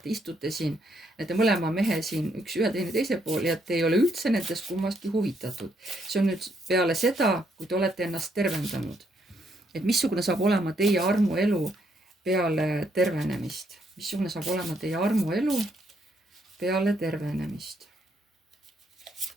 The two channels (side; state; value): both; normal; correlation 0.74